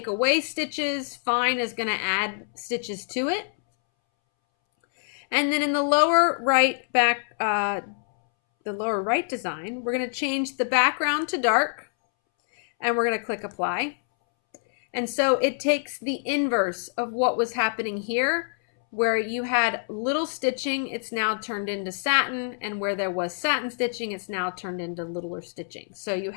away stitches, fine is going to add stitches to it. And then in the lower right design, we're going to change the background to dark, and we're going to click apply. And so it takes the inverse of what was happening here, where you had little stitching, it's now turned into satin, and where there was satin stitching, it's now turned into littler stitching. So you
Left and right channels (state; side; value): silent; right; 61 dB below the other